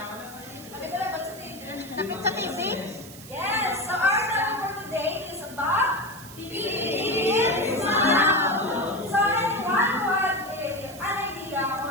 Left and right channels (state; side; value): noise; right; hiss, 17 dB below the sound